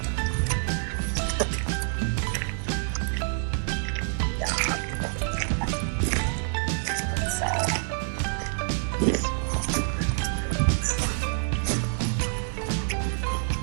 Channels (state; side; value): silent; left; digital silence